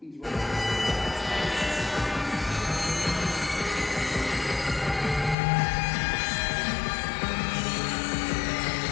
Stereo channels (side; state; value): right; drops out; at 5.4 s